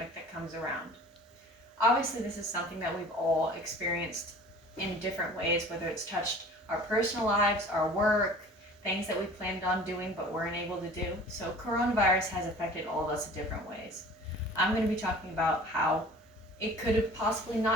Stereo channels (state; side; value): normal; both; correlation 0.45